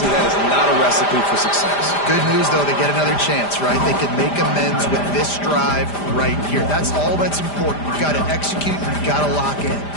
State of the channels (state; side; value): late; right; 5.0 ms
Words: that is not a recipe for success. Good news, though, they get another chance, right? They can make amends with this drive right here. That's all that's important. You've got to execute. You've got to lock in.